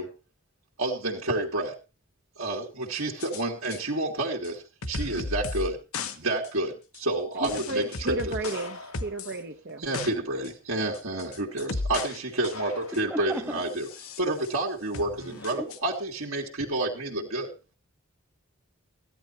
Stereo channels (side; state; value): both; normal; correlation -0.08